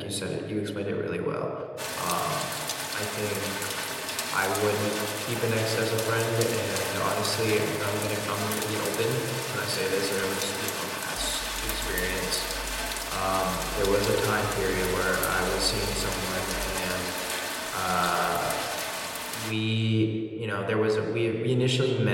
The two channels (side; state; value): both; identical; correlation 1.00